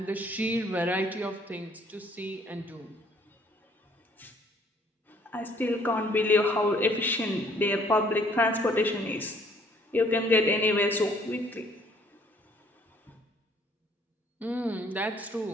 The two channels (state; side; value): normal; both; correlation 0.61